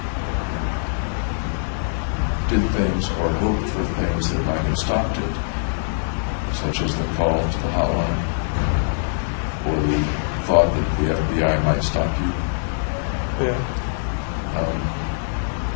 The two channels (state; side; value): silent; right; 64 dB below the other